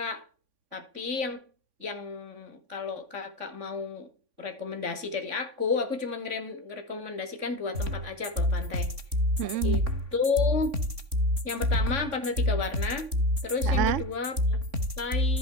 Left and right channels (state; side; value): late; left; 3.5 ms